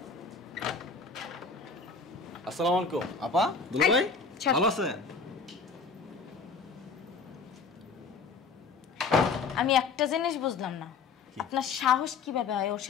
আসসালামু আলাইকুম আপা, দুলা ভাই, ভালো আছেন? আমি একটা জিনিস বুঝলাম না, আপনার সাহস কিভাবে হয় ওর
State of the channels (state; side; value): quieter; right; 4.8 dB